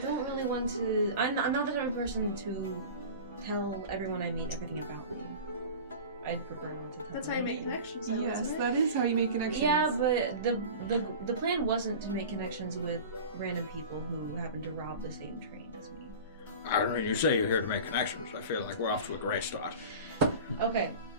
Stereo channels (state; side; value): inverted; both; correlation -0.35